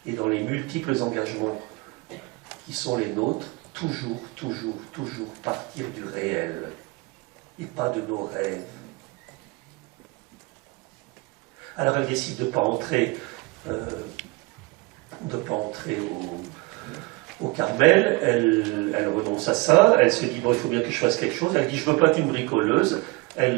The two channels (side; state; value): left; quieter; 25.1 dB